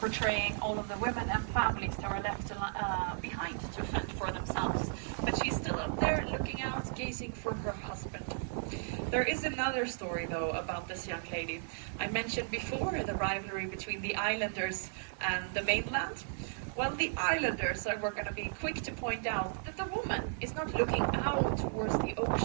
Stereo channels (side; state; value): left; silent; digital silence